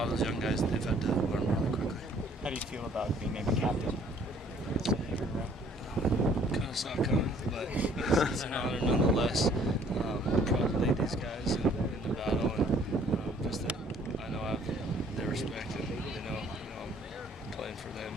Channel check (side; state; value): both; normal; correlation 0.58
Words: of those young guys, they've had to learn really quickly. How do you feel about being named captain? Kind of saw it coming, but it's an honor nonetheless. I'm proud to lead these guys in the battle, and just that I know I have their respect, and they know I'm playing for them